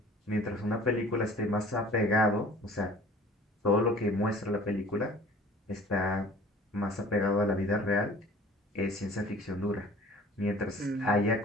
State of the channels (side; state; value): both; normal; correlation 0.48